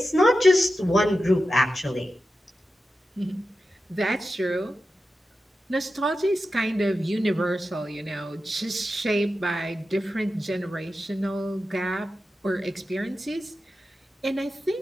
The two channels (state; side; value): normal; both; correlation 0.92